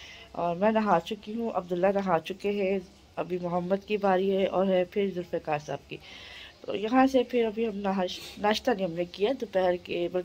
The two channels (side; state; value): both; identical; correlation 1.00